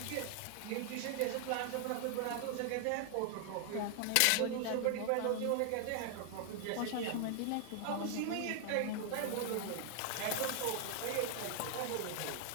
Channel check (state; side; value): different; both; correlation 0.00